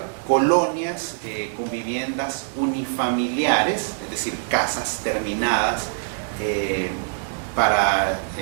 colonias con viviendas unifamiliares, es decir, casas terminadas en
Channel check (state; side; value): silent; left; 63 dB below the other